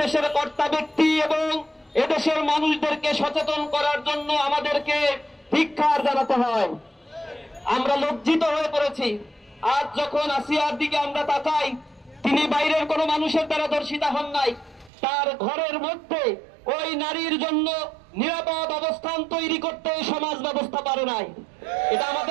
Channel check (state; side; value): drops out; left; at 14.9 s